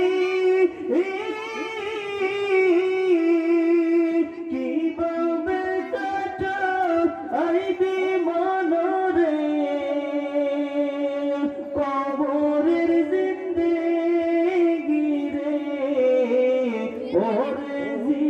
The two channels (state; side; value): identical; both; correlation 1.00